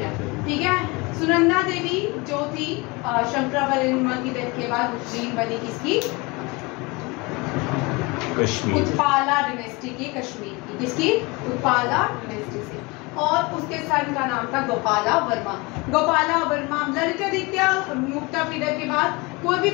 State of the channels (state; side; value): quieter; right; 25.9 dB